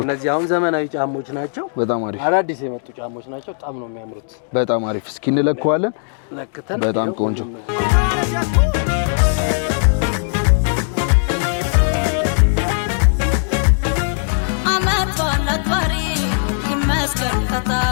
እነዚህ አሁን ዘመናዊ ጫሞች ናቸው። በጣም አሪፍ አዳዲስ የመጡ ጫሞች ናቸው። በጣም ነው የሚያምሩት። በጣም አሪፍ። እስኪ እንለካዋለን። በጣም ቆንጆ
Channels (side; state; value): right; silent; digital silence